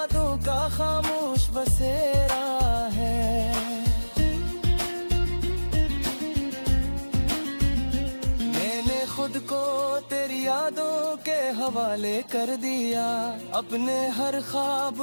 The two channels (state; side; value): inverted; both; correlation -1.00